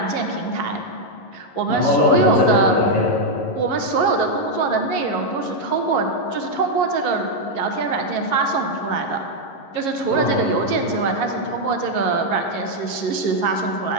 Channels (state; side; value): late; right; 11 ms